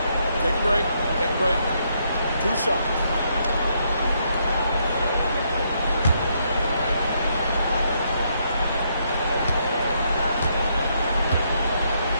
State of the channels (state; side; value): inverted; both; correlation -0.75